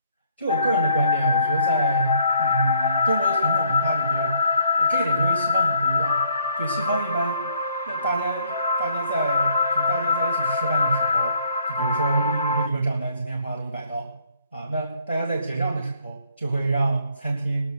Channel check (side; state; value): both; inverted; correlation -0.65